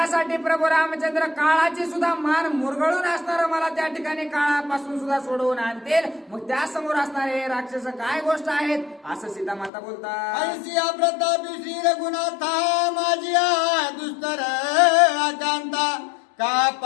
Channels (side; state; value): right; drops out; at 9.7 s